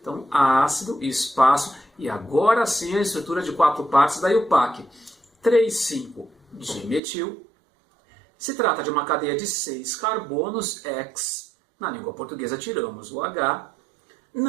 Então, ácido, espaço, e agora sim a estrutura de 4 partes da IUPAC. 3, 5 de metil. Se trata de uma cadeia de 6 carbonos, X. Na língua portuguesa tiramos o H.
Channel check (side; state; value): left; drops out; at 7.0 s